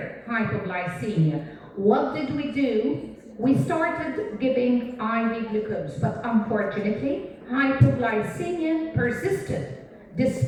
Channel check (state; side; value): identical; both; correlation 1.00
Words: hypoglycemia. What did we do? We started giving IV glucose, but unfortunately, hypoglycemia persisted